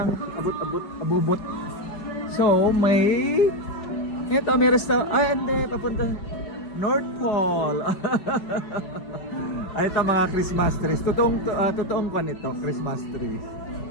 Abubot. So, may... Ito, may restaurant. Ay, hindi. Papunta. North Pole. Ay, ito mga Christmas trees. Totoong kwan ito, Christmas trees.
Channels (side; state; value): right; late; 5.3 ms